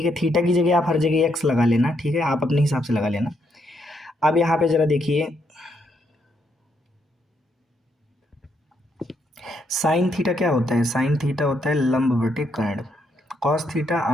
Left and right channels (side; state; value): both; normal; correlation 0.76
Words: है। थीटा की जगह आप हर जगह एक्स लगा लेना, ठीक है, आप अपने हिसाब से लगा लेना। अब यहाँ पे ज़रा देखिए साइन थीटा क्या होता है, साइन थीटा होता है लंब बटे कर्ण। कॉस थीटा